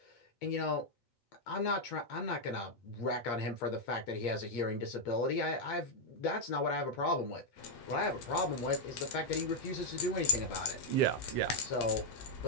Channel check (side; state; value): right; late; 8.6 ms